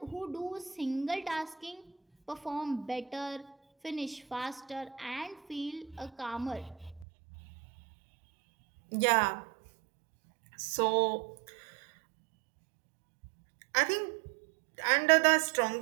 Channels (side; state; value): left; drops out; at 7.1 s